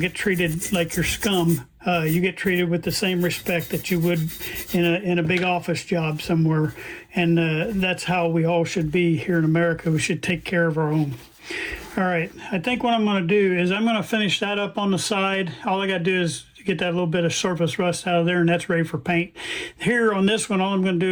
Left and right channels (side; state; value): both; identical; correlation 1.00